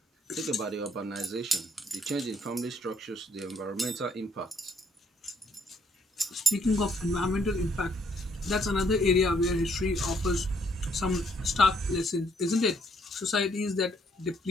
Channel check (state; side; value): normal; both; correlation 0.68